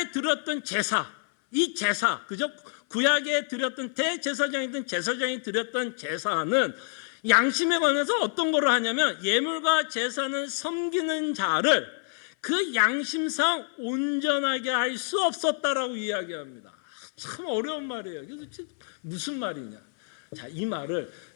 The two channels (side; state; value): right; silent; 56 dB below the other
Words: 드렸던 제사, 이 제사, 그죠? 구약에 드렸던 대제사장이든 제사장이 드렸던 제사는 양심에 관해서 어떤 거를 하냐면 예물과 제사는 섬기는 자를 그 양심상 온전하게 할 수 없었다라고 이야기합니다. 참 어려운 말이에요. 그래서 무슨 말이냐? 자, 이 말을